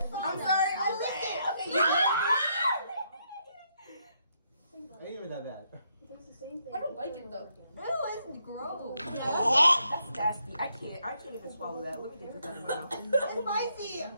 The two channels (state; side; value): inverted; both; correlation -0.76